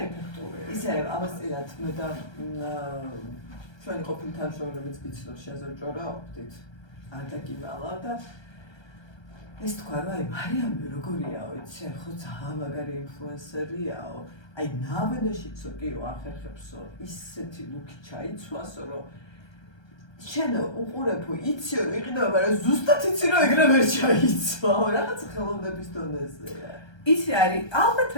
ეფექტური. ისე ამასწინათ მე და ჩვენი ყოფილი თანამშრომლებიც გიცნობს შეზრჭორაობდით. არ დაგიმალა და ეს თქვა რომ აი მარიამი როგორიაო, იცი, ხო ძალიან მაგარი ინფლუენსერიაო. აი ნავენაშიცო კიო ახერხებსო ისეთი ლუკი ჩაიცვასო რომ შენ უყურებო იცი რომ იყიდება მაგრამ ზუსტად იცი რომ ეგრე ვერ ჩაიცვაო რაღაც ხელოვნების დონეზეა იცი არის ალბათ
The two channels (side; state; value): right; late; 1.3 ms